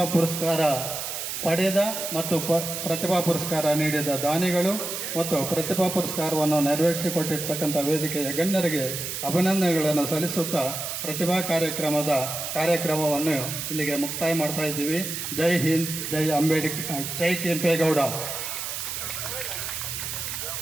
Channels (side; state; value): right; noise; hiss, 5 dB below the sound